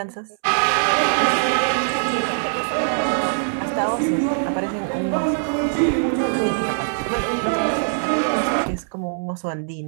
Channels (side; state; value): left; silent; 64 dB below the other